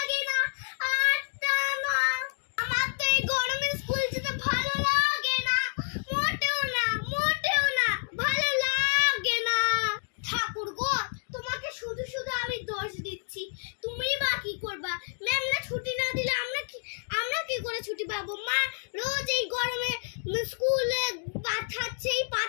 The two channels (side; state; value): right; silent; digital silence